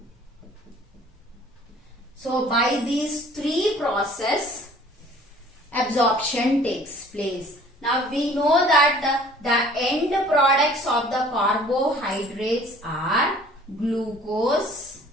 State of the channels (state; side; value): normal; both; correlation 0.52